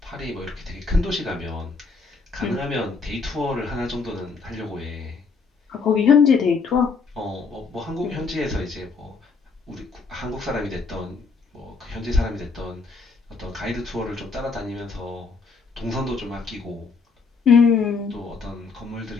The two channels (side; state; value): right; quieter; 4.7 dB